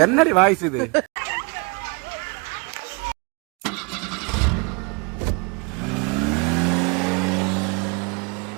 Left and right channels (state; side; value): quieter; left; 31.4 dB